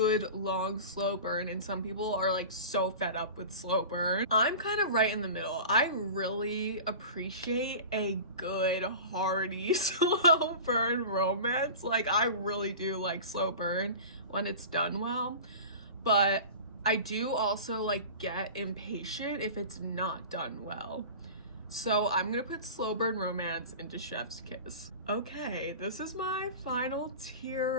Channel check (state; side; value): inverted; both; correlation -0.35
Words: long slow burn, and some people are like so fed up with slow burn. I'm kind of right in the middle. I really appreciate a good hearty slow burn romance. Like, I really do like slow burn when it's done well, but I do also like get impatient if it's not done well. So I'm gonna put slow burn romance into Chef's Kiss. Okay, this is my final